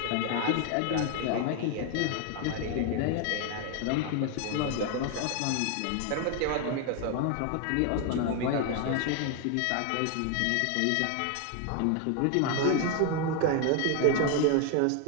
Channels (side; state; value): both; different; correlation 0.01